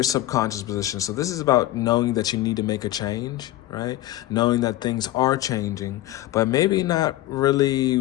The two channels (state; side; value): quieter; right; 15.6 dB